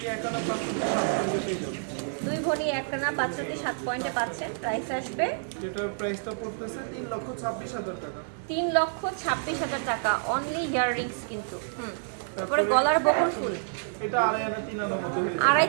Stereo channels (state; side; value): silent; left; digital silence